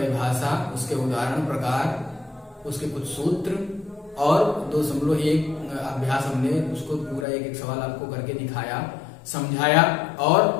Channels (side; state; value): right; drops out; at 7.2 s